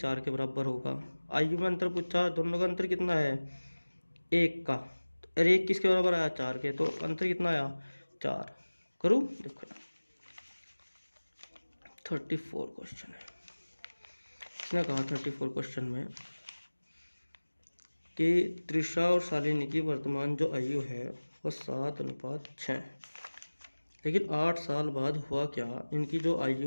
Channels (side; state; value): both; inverted; correlation -1.00